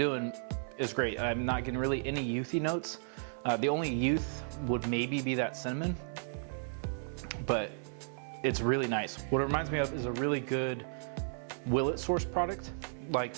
is great. I'm not getting really any youthy notes. The only youth would maybe be that cinnamon, but it's really nice. What it reminds me of is a really good Willet source product, like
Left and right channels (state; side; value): silent; left; 55 dB below the other